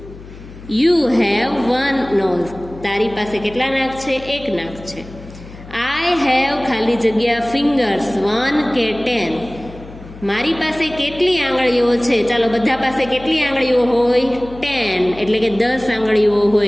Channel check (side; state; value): left; noise; hum, 17 dB below the sound